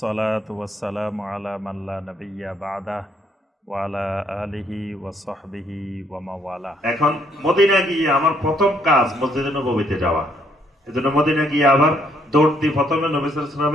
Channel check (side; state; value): both; normal; correlation 0.70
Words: ওয়াসসালামু আলা মান লা নাবিয়্যা বা'দা ওয়া আলা আলিহি ওয়া সাহবিহি ওয়া মাওয়ালা। এখন মদিনা গিয়ে আমার প্রথম কাজ মসজিদে নববীতে যাওয়া। এজন্য মদিনা গিয়ে আবার দৌড় দিয়ে প্রথমে নবী সাল্লাল্লাহু আলাইহি